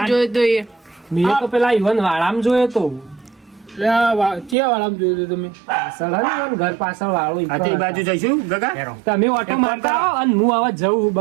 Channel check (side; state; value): left; drops out; at 4.5 s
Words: જોઈ દઈએ મેં તો પેલા ઈવન વાળામ જોયો તો ક્યાં વાળામ જોયું તમે પાછળ હે ને ઈવન ઘર પાછળ વાળો ઈ આ તે બાજુ જઈશું ગગા હેરો. તમે ઓટો મારતા રહો અને હું હવે જવું